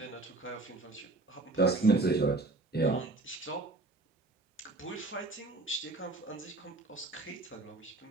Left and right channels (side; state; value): left; quieter; 3.1 dB